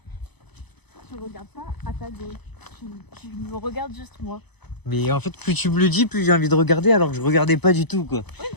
Tu regardes pas à ta gauche. Tu me regardes juste moi. Mais en fait, plus tu me le dis, plus j'ai envie de regarder alors que je regardais pas du tout, quoi. Oui,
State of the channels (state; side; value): late; right; 0.99 ms